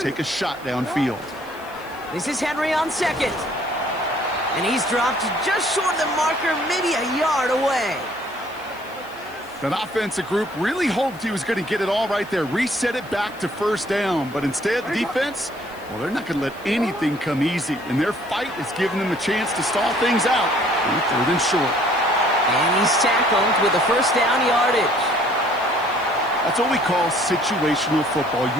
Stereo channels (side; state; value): left; noise; hiss, 24 dB below the sound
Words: take a shot downfield. This is Henry on 2nd. And he's dropped just short of the marker, maybe a yard away. That offensive group really hoped he was going to get it all right there, reset it back to 1st down. But instead, the defense, well, they're not going to let anything come easy. And their fight is giving them a chance to stall things out on 3rd and short. And he's tackled with the 1st down yardage. That's what we call situational football.